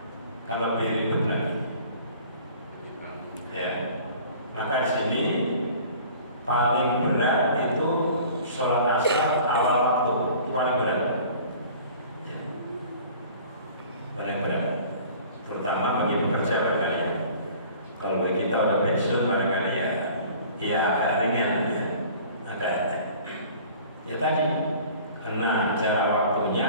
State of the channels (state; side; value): inverted; both; correlation -0.47